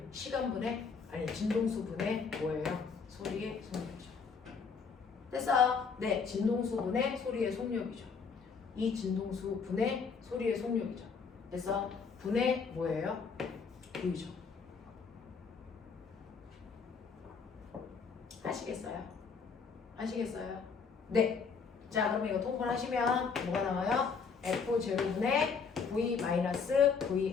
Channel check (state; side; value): quieter; right; 5.5 dB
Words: 시간분의 아니 진동수분의 뭐예요? 소리의 속력이죠. 그래서 네, 진동수분의 소리의 속력이죠. 이 진동수분의 소리의 속력이죠. 그래서 분의 뭐예요? V죠. 아시겠어요? 아시겠어요? 네. 자, 그러면 이거 통분하시면 뭐가 나와요? F0분의